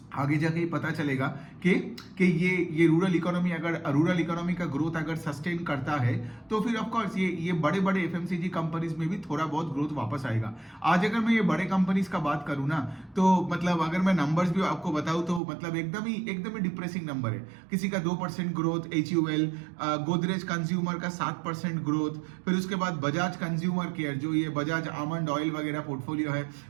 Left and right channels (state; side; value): drops out; left; at 15.4 s